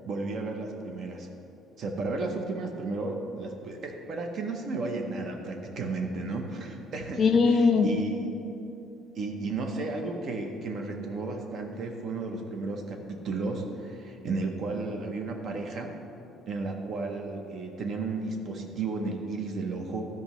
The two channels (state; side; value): normal; both; correlation 0.65